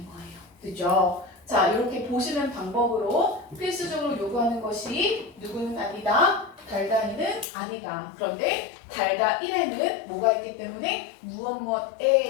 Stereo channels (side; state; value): right; drops out; at 7.5 s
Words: 거예요. 그죠? 자, 이렇게 보시는 방법으로 필수적으로 요구하는 것이 누구는 아니다. 달다 2는 아니다. 그런데 달다 1에는 뭐가 있기 때문에